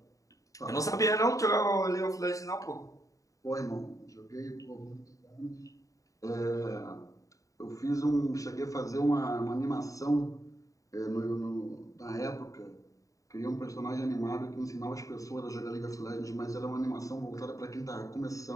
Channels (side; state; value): right; late; 0.16 ms